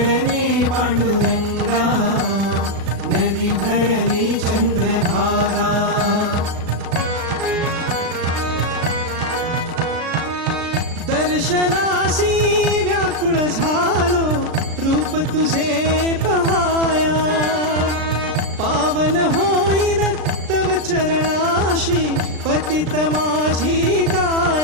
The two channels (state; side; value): late; left; 36 ms